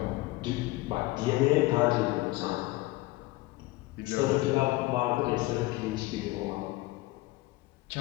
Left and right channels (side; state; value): right; quieter; 19.5 dB